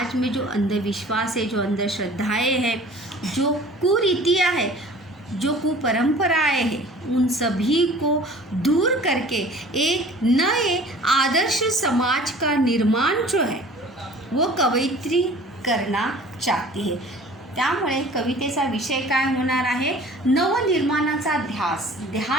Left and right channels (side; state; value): both; normal; correlation 0.46